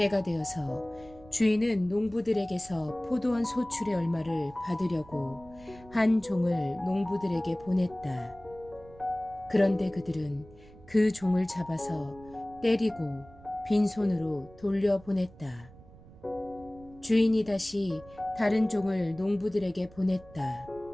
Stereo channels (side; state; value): right; noise; rumble, 22 dB below the sound